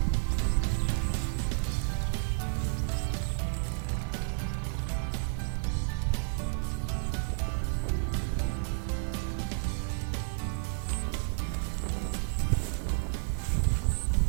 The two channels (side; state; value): left; silent; digital silence